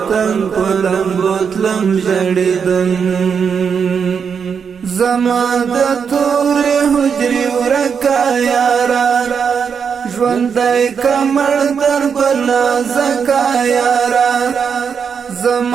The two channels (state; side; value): quieter; left; 6.6 dB